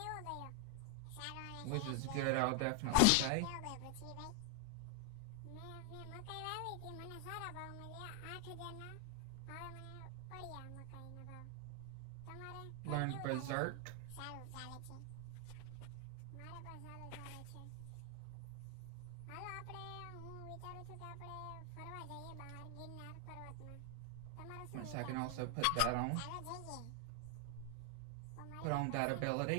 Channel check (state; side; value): different; both; correlation 0.01